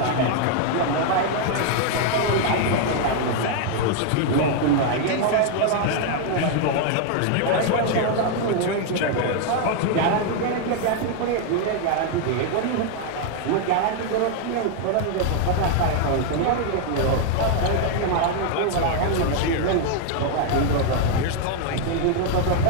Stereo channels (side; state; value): both; different; correlation 0.00